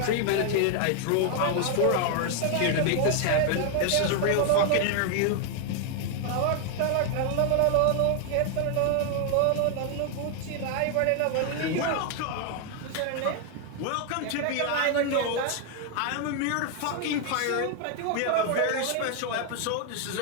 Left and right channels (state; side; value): different; both; correlation 0.00